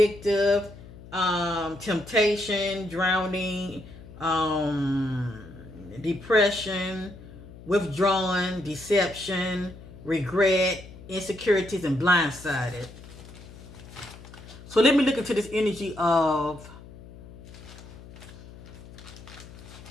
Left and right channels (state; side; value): noise; left; hum, 17 dB below the sound